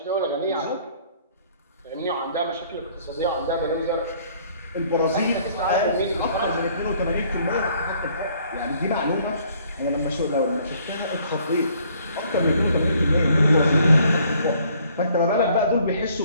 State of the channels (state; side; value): inverted; both; correlation -0.61